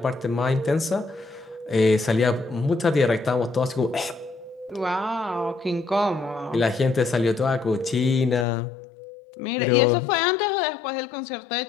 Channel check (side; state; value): right; drops out; at 8.5 s